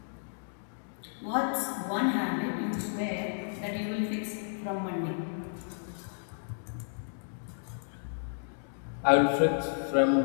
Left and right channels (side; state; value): right; silent; digital silence